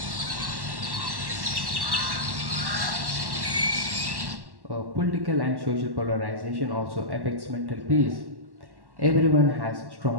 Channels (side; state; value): left; late; 1.1 ms